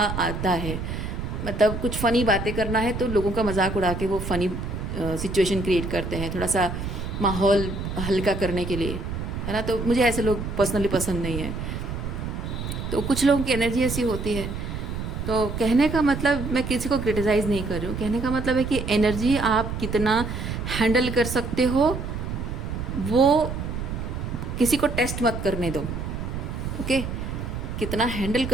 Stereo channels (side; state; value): right; noise; rumble, 5 dB below the sound